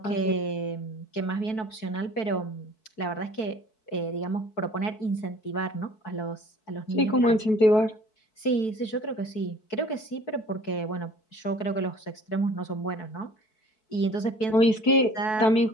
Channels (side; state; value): right; late; 4.6 ms